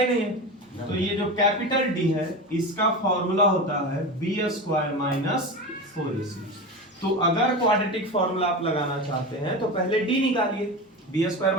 नहीं है, तो ये जो कैपिटल D है इसका फॉर्मूला होता है b स्क्वायर माइनस 4ac। तो अगर क्वाड्रेटिक फॉर्मूला आप लगाना चाहते हैं तो पहले d निकालिए, b स्क्वायर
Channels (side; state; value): both; normal; correlation 0.25